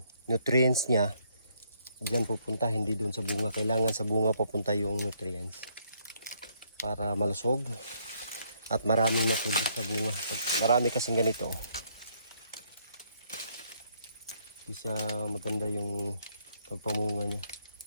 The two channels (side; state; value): both; inverted; correlation -0.69